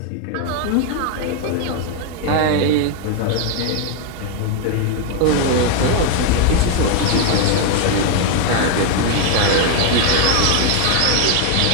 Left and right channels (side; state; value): both; different; correlation 0.01